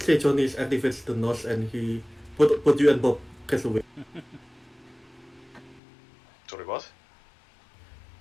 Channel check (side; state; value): right; drops out; at 5.8 s